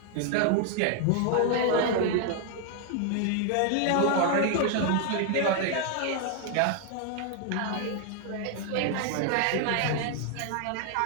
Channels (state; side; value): different; both; correlation 0.00